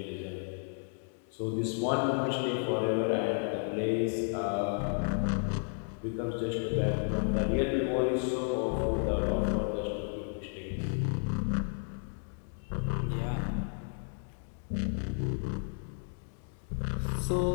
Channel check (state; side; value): silent; right; 56 dB below the other